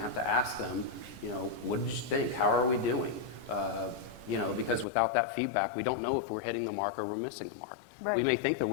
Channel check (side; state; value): right; drops out; at 4.9 s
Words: to ask them, you know, what did you think? How are we doing? You know, because without that feedback, we don't know if we're hitting the mark or we're missing the mark. Right. We may think that